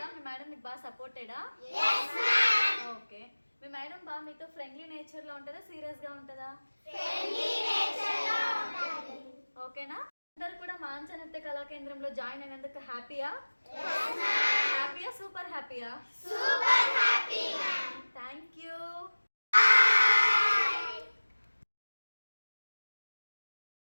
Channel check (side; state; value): both; inverted; correlation -1.00